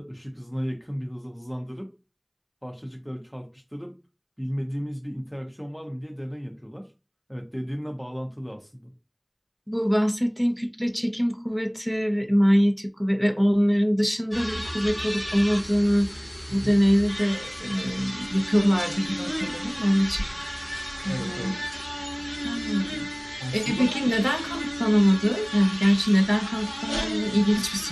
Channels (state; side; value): identical; both; correlation 1.00